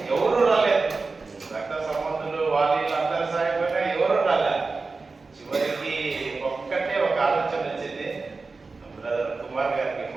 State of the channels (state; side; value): quieter; left; 4.0 dB